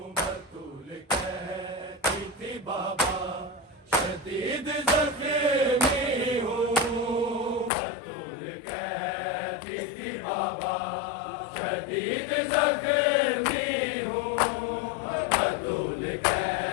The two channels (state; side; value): drops out; right; at 7.7 s